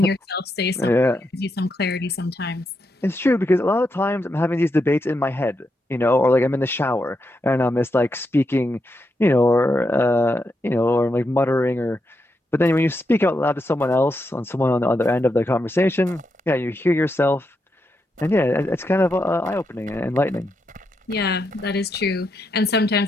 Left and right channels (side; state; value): both; normal; correlation 0.83